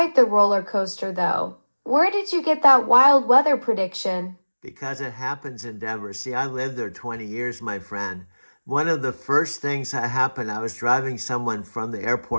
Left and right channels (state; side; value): inverted; both; correlation -1.00